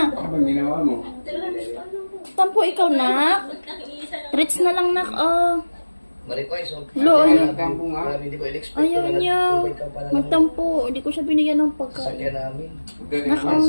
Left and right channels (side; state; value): both; inverted; correlation -1.00